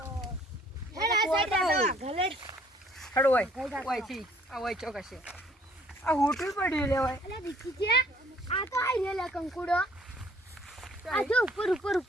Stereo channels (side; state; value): both; normal; correlation 0.60